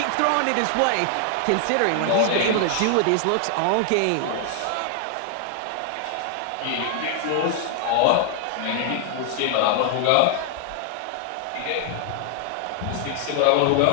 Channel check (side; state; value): both; different; correlation 0.00